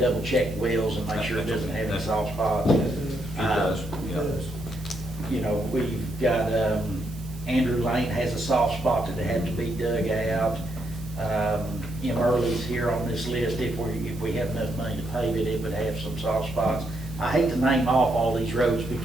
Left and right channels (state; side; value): noise; right; hiss, 23 dB below the sound